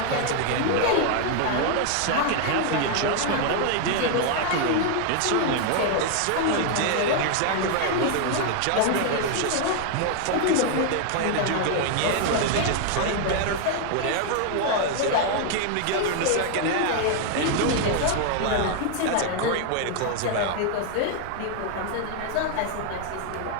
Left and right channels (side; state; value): both; different; correlation 0.00